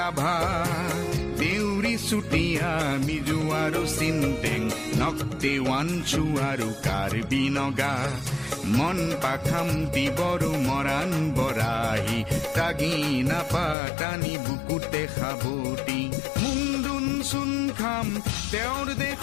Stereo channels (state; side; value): drops out; right; at 13.8 s